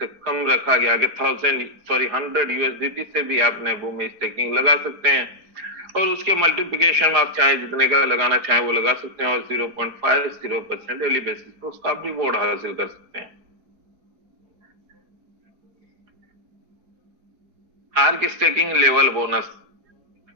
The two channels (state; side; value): late; left; 4.8 ms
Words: कम रखा गया कि 100 यूएसडीटी से भी आप नेबू में स्टेकिंग लगा सकते हैं और उसके मल्टीप्लिकेशन में आप चाहे जितने का लगाना चाहें वो लगा सकते हैं और 0.50% डेली बेसिस पर उसका आप रिवॉर्ड हासिल कर सकते हैं। आर्क स्टेकिंग लेवल बोनस,